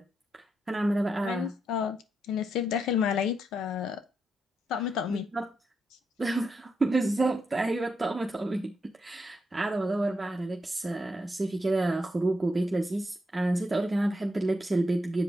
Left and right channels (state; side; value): normal; both; correlation 0.82